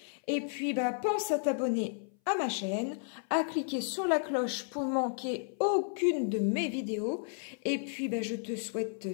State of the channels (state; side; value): silent; right; 56 dB below the other